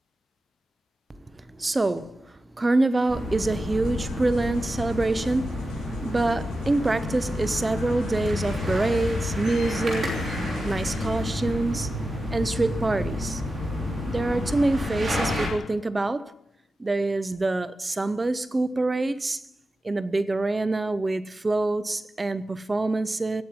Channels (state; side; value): normal; both; correlation 0.92